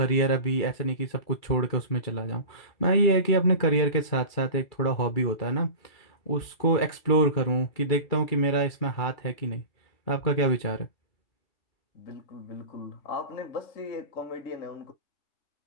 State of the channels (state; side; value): late; right; 2.4 ms